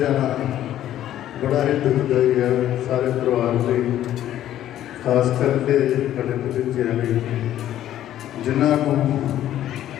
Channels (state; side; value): quieter; right; 12.2 dB